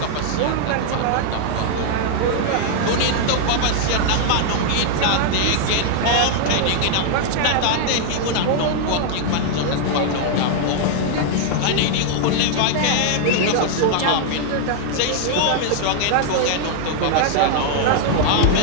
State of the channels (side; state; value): both; different; correlation 0.00